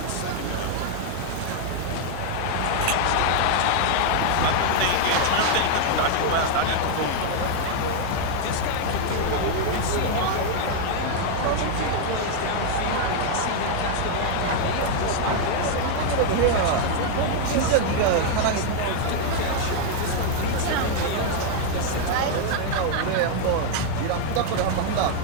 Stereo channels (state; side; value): different; both; correlation 0.00